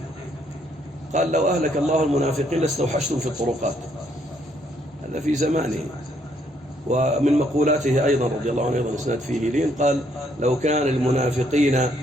قال لو أهلك الله المنافقين لاستوحشتم في الطرقات. هذا في زمانه. ومن مقولاته أيضا رضي الله عنه أيضا إسناد فيه لين، قال لو كان المنافقين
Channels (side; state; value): both; normal; correlation 0.70